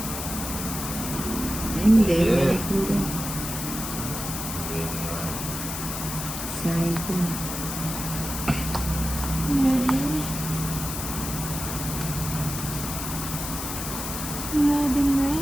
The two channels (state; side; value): noise; left; hiss, 5 dB below the sound